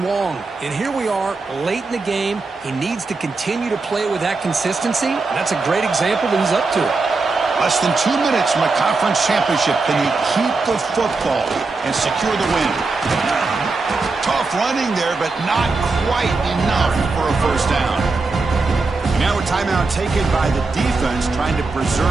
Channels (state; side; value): quieter; left; 3.9 dB